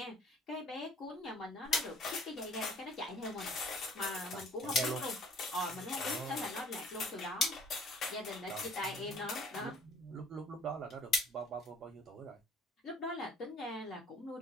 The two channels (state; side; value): normal; both; correlation 0.54